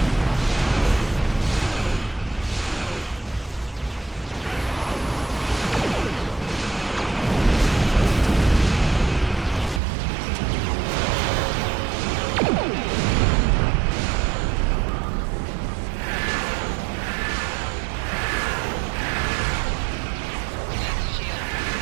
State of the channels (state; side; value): drops out; left; at 9.8 s